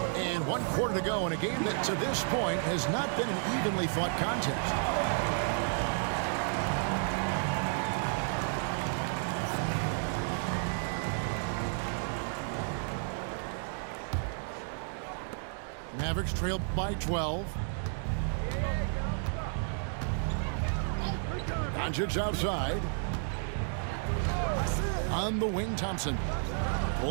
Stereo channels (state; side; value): silent; left; 56 dB below the other